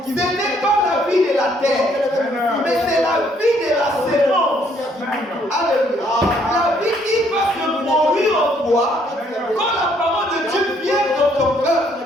ce n'est pas la vie de la terre, mais c'est la vie de la sémence. Alléluia. La vie qui va se produire en toi, quand la parole de Dieu vient dans ton cœur,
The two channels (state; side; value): normal; both; correlation 0.67